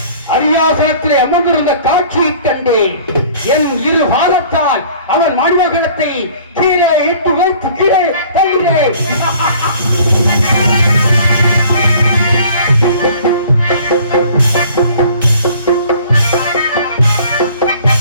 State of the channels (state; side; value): inverted; both; correlation -0.51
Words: அரியாசனத்திலே அமர்ந்திருந்த காட்சியை கண்டேன். என் இரு பாதத்தால் அவன் மணிமகனத்தை கீழே இட்டு வைத்து கீழே தள்ளினேன்.